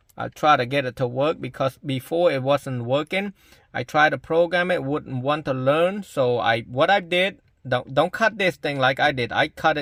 I try to get it to work, because before it wasn't working. I tried to program it, wouldn't want to learn. So what I did, don't cut this thing like I did. I cut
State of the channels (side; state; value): both; identical; correlation 1.00